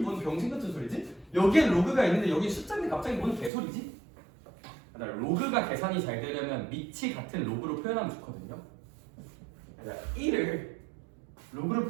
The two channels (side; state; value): left; drops out; at 3.5 s